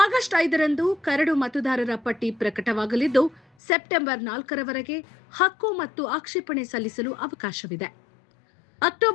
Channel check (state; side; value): drops out; right; at 3.4 s